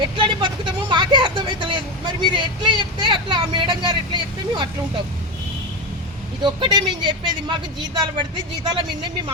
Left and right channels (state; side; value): normal; both; correlation 0.16